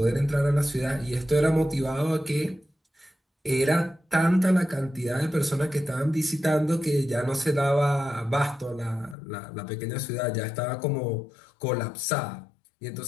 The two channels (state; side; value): drops out; right; at 9.2 s